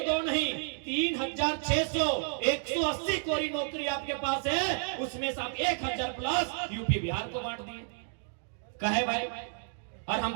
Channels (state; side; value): silent; left; 57 dB below the other